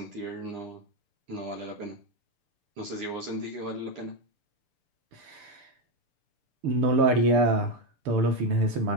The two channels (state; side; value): late; left; 6.8 ms